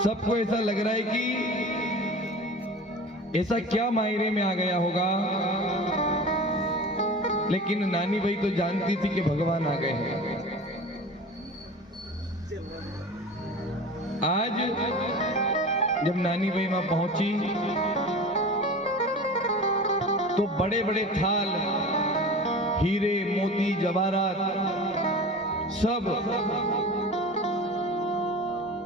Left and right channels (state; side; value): normal; both; correlation 0.35